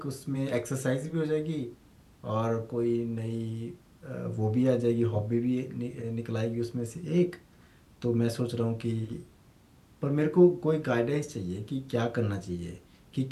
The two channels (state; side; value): identical; both; correlation 1.00